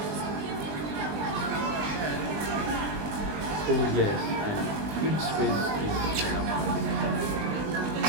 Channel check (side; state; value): left; late; 20 ms